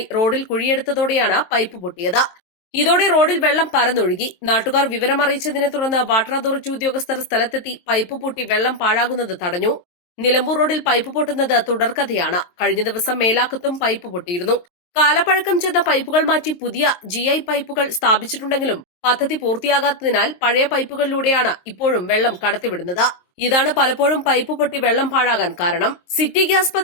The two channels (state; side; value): late; right; 23 ms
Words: റോഡിൽ കുഴിയെടുത്തതോടെയാണ് പൈപ്പ് പൊട്ടിയത്. ഇതോടെ റോഡിൽ വെള്ളം പരന്നൊഴുകി. നാട്ടുകാർ വിവരമറിയിച്ചതിനെ തുടർന്ന് വാട്ടർ അതോറിറ്റി ഉദ്യോഗസ്ഥർ സ്ഥലത്തെത്തി പൈപ്പ് പൊട്ടി വെള്ളം പാഴാകുന്നത് തടഞ്ഞു. നിലമ്പൂർ റോഡിൽ പൈപ്പ് പൊട്ടുന്നത് തുടർക്കഥയാണ്. കഴിഞ്ഞ ദിവസം മേലാക്കത്തും പൈപ്പ് പൊട്ടിയിരുന്നു. കാലപ്പഴക്കം ചെന്ന പൈപ്പുകൾ മാറ്റി പുതിയ GI പൈപ്പുകൾ സ്ഥാപിച്ചിട്ടുണ്ടെങ്കിലും പദ്ധതി പൂർത്തിയാകാത്തതിനാൽ പഴയ പൈപ്പുകളിലൂടെയാണ് ഇപ്പോഴും വെള്ളം കടത്തിവിടുന്നത്. ഇതാണ് പലപ്പോഴും പൈപ്പ് പൊട്ടി വെള്ളം പാഴാകാൻ കാരണം. സിറ്റി ഗ്യാസ്